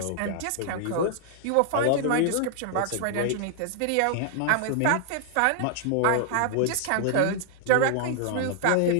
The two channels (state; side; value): different; both; correlation 0.00